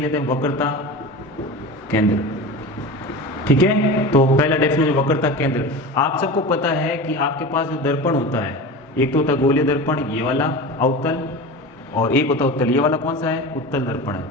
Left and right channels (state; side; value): normal; both; correlation 0.30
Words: हैं वक्रता केंद्र। ठीक है, तो पहला डेफिनेशन वक्रता केंद्र। आप सबको पता है कि आपके पास जो दर्पण होता है, एक तो होता है गोलीय दर्पण, ये वाला अवतल, और एक होता है उत्तल। ये वाला कौन सा है, उत्तल दर्पण है।